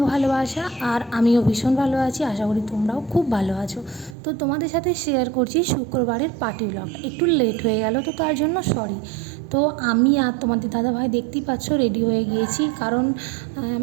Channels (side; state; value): left; drops out; at 4.2 s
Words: ভালোবাসা। আর আমিও ভীষণ ভালো আছি, আশা করি তোমরাও খুব ভালো আছো। তো তোমাদের সাথে শেয়ার করছি শুক্রবারের পার্টি ব্লগটা। একটু লেট হয়ে গেল, তো তার জন্য সরি। তো আমি আর তোমাদের দাদাভাই দেখতেই পাচ্ছ রেডি হয়ে গিয়েছি, কারণ